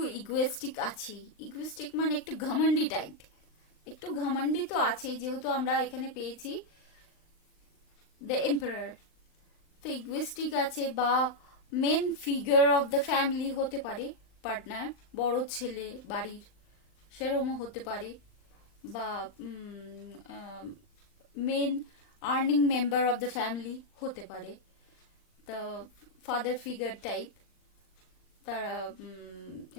ইগোয়েস্টিক আছে। ইগোয়েস্টিক মানে একটু ঘমন্ডি টাইপ, একটু ঘমন্ডি তো আছেই, যেহেতু আমরা এখানে পেয়েছি দ্য এম্পারার। তো ইগোয়েস্টিক আছে, বা main figure of the family হতে পারে পার্টনার, বড় ছেলে বাড়ির সেরকমও হতে পারে, বা main earning member of the family হতে পারে, দ্য ফাদার ফিগার টাইপ। তারা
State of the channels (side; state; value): right; late; 39 ms